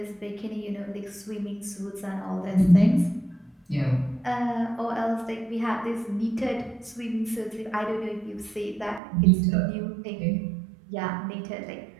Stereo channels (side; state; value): left; drops out; at 9.0 s